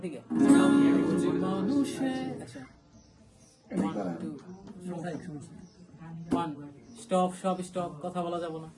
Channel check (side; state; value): both; identical; correlation 1.00